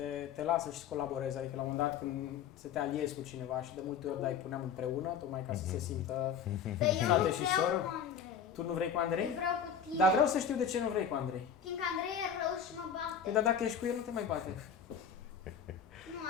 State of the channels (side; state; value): right; quieter; 7.3 dB